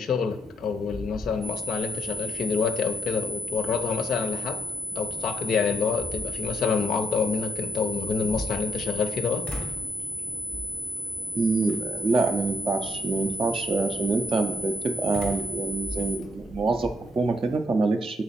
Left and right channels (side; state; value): both; normal; correlation 0.73